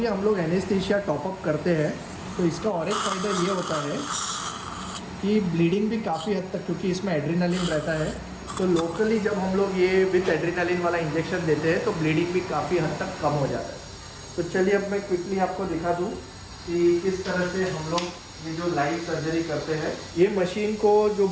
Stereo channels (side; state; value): both; identical; correlation 1.00